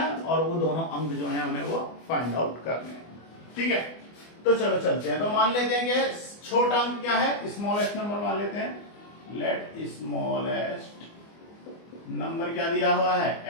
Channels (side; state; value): right; late; 24 ms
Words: और वो दोनों अंक जो है हमें वो फाइंड आउट करने हैं। ठीक है, तो चलो चलते हैं। तो मान लेते हैं कि छोटा अंक क्या है, स्मॉलेस्ट नंबर मान लेते हैं। लेट स्मॉलेस्ट नंबर क्या दिया हुआ है,